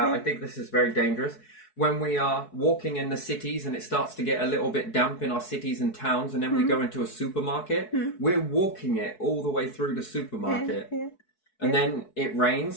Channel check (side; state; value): right; late; 4.7 ms